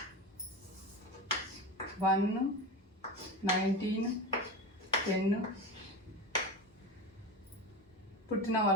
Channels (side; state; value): both; normal; correlation 0.25